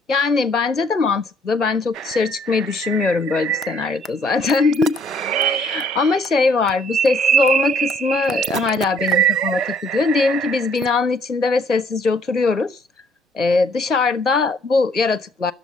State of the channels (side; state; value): both; normal; correlation 0.63